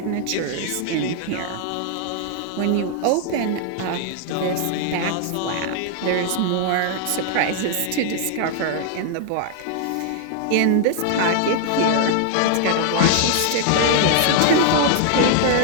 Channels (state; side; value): different; both; correlation 0.00